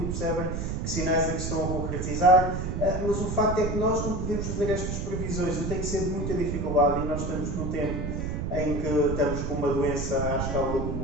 e percebem que sinais é que estão a concretizar, mas o facto é que nós não podemos fazer estas previsões, e tem que ser de muita dificuldade, e nós estamos num tempo em que estamos com uma doença à escala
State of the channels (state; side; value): noise; right; rumble, 2 dB below the sound